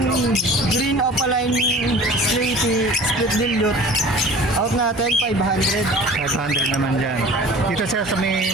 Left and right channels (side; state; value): both; normal; correlation 0.42